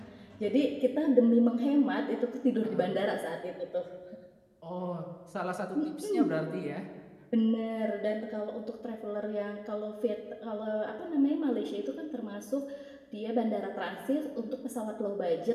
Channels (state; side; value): identical; both; correlation 1.00